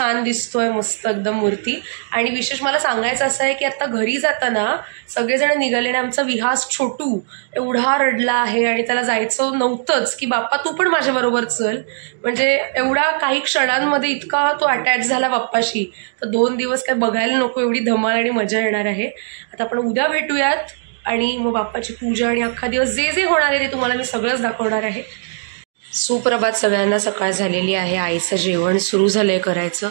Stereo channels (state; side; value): silent; left; digital silence